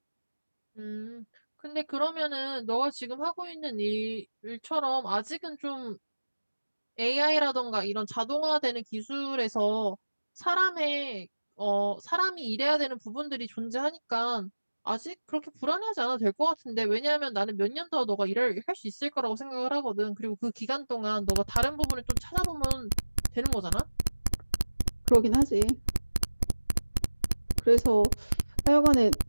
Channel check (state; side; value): inverted; both; correlation -1.00